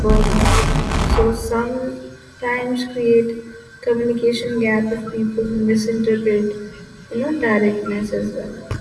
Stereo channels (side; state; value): both; identical; correlation 1.00